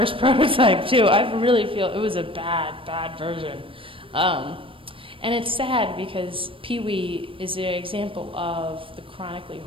prototype, too. I really feel it was a bad version. And it's sad because Pee-wee is an example of the chronically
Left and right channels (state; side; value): late; left; 0.25 ms